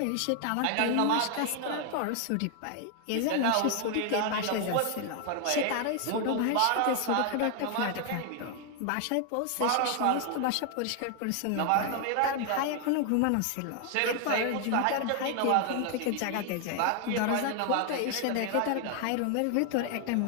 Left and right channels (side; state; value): both; different; correlation 0.00